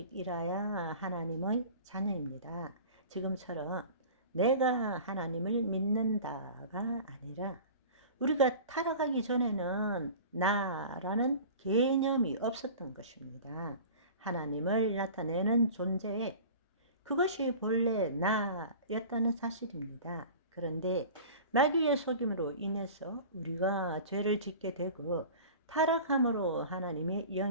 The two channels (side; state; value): both; inverted; correlation -0.39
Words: 하나님의 자녀입니다. 지금처럼 내가 하나님을 믿는다가 아니라 우리가 타락하기 전에는 나라는 개념이 없었던 것입니다. 하나님을 나타내는 존재에 그것이 본래 나였다는 사실입니다. 그런데 마귀의 속임으로 인해서 우리가 죄를 짓게 되고 타락함으로 하나님의